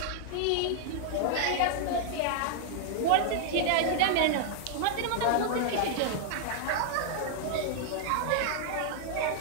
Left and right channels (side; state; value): both; different; correlation -0.01